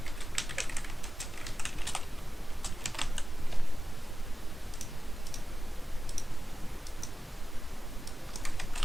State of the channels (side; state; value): both; normal; correlation 0.94